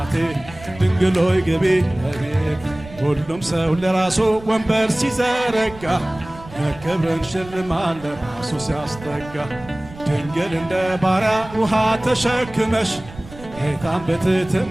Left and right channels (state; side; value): noise; right; rumble, 17 dB below the sound